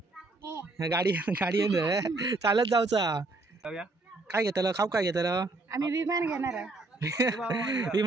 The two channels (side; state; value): left; quieter; 3.2 dB